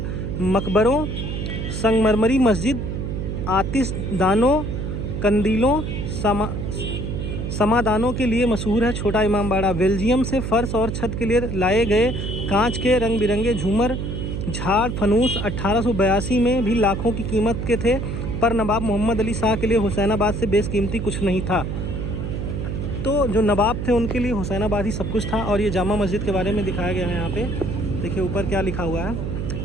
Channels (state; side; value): noise; right; hum, 4 dB below the sound